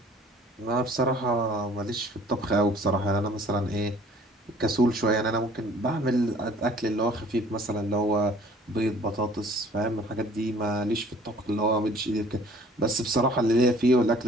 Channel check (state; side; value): normal; both; correlation 0.54